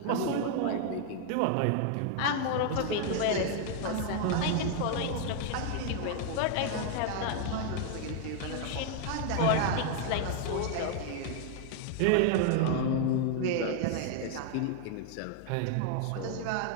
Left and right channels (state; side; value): different; both; correlation 0.00